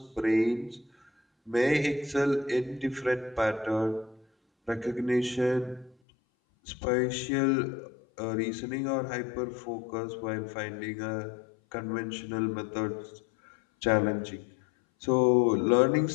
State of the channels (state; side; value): drops out; right; at 6.0 s